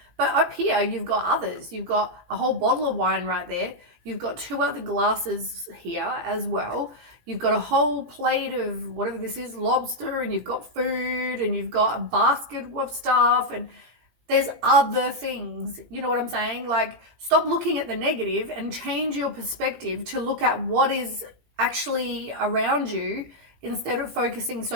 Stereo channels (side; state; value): left; late; 17 ms